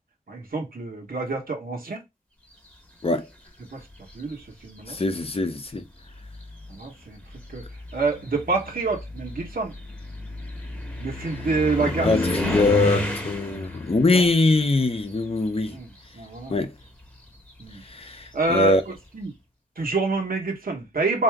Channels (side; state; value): both; normal; correlation 0.59